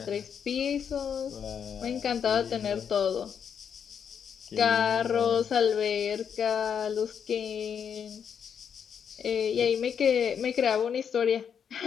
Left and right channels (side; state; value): right; quieter; 7.6 dB